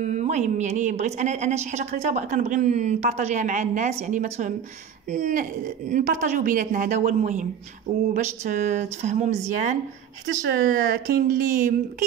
يعني بغيت انا شي حاجه قريتها كنبغي نبارطاجيها مع الناس يعني ما نبارطاجيو بيناتنا هذا هو المهم وباش تفهموا مزيان حيتاش كاين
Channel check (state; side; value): quieter; left; 8.4 dB